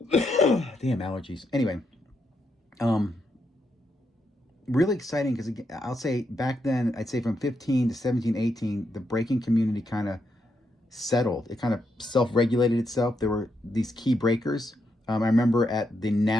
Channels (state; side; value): normal; both; correlation 0.81